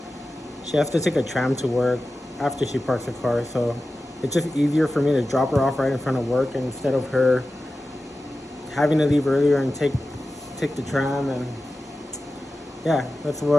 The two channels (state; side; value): normal; both; correlation 0.94